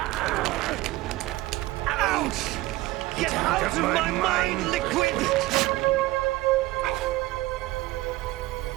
Ouch! Get out of my mind, Liquid!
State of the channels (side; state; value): left; quieter; 18.7 dB